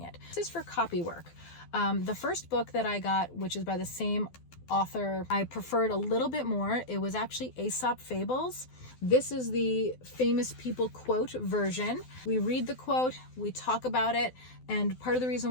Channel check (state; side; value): late; right; 12 ms